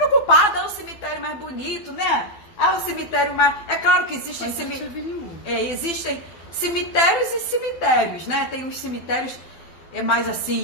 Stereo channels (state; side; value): late; right; 12 ms